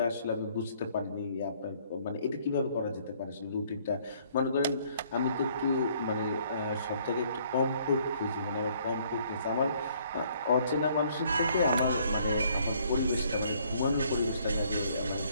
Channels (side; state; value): both; inverted; correlation -0.63